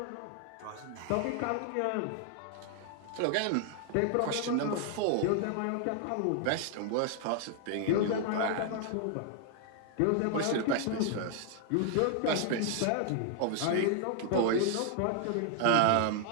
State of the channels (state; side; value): different; both; correlation 0.00